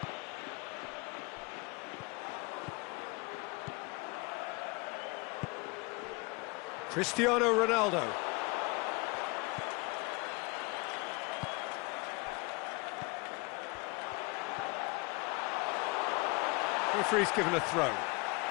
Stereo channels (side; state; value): right; quieter; 27.0 dB